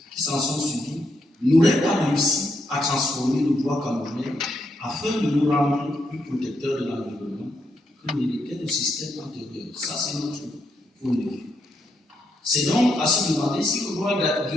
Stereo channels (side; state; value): both; normal; correlation 0.79